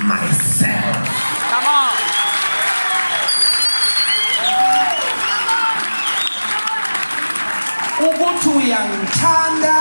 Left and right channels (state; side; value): inverted; both; correlation -1.00